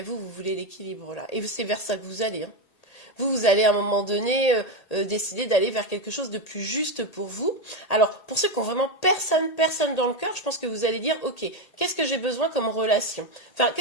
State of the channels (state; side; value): late; right; 1.8 ms